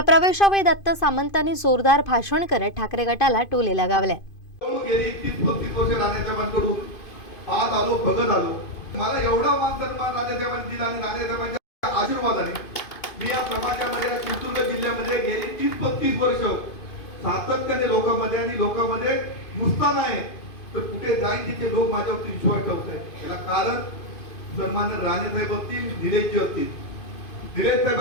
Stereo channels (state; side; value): late; right; 2.5 ms